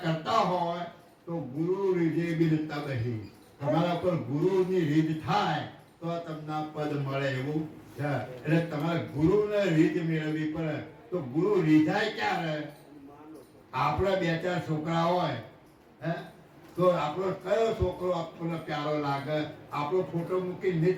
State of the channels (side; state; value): both; identical; correlation 1.00